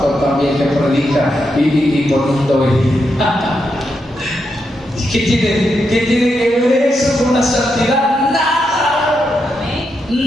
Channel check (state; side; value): normal; both; correlation 0.83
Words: también que predica y poniendo vejigas. ¿Qué tiene que ver eso con la santidad?